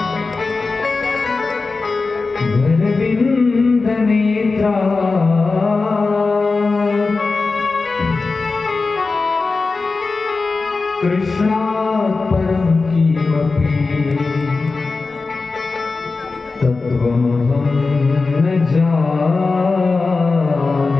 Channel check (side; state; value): right; quieter; 4.0 dB